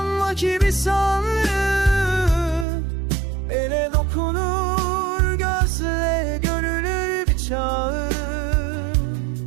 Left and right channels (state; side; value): drops out; left; at 2.7 s